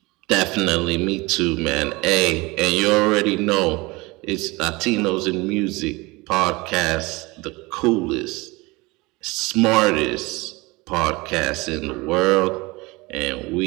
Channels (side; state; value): left; quieter; 23.6 dB